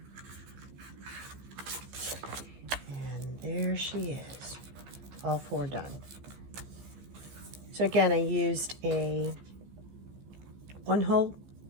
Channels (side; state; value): left; late; 15 ms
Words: And there she is, all four done. So again, I used a 1